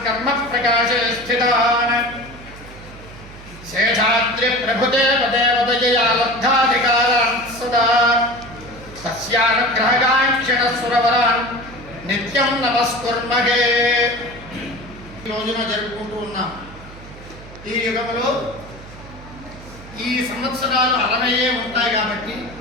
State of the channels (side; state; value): right; noise; hum, 18 dB below the sound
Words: కర్మ ప్రకాశే స్థితాన్ శేషాద్రి ప్రభుదేవదేవతయా లబ్ధాధికారాన్ సదా తస్యానుగ్రహగాంక్షణ సురవరాన్ నిత్యం నమస్కుర్మహే. ఈ రోజున జరుపుకుంటూ ఉన్నాం. ఈ యుగంలో ఈ సంవత్సరాలు 60 ఉంటాయి కాబట్టి